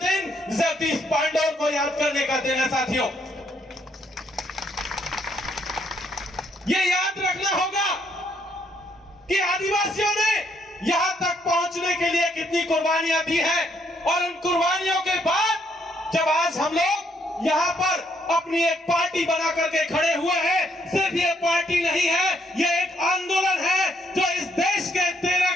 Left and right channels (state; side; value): normal; both; correlation 0.72